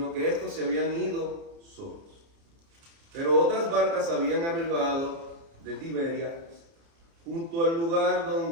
que estos se habían ido solos. Pero otras barcas habían arribado de Tiberias, junto al lugar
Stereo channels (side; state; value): left; late; 30 ms